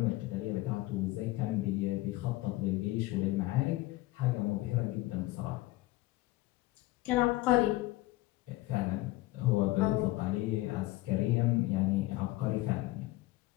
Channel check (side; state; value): right; quieter; 19.0 dB